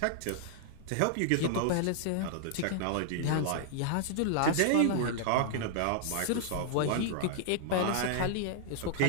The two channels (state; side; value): different; both; correlation 0.00